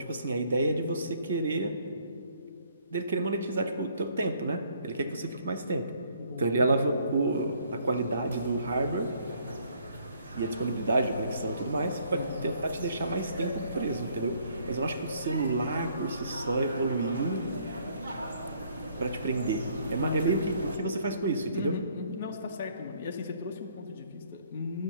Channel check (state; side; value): inverted; both; correlation -0.64